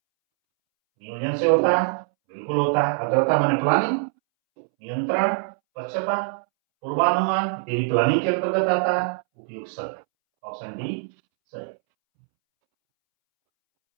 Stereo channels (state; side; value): silent; left; 63 dB below the other